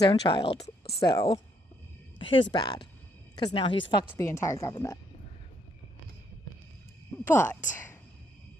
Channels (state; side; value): normal; both; correlation 0.72